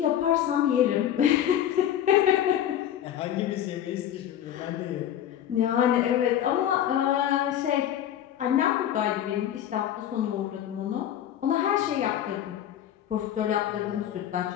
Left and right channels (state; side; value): quieter; right; 10.8 dB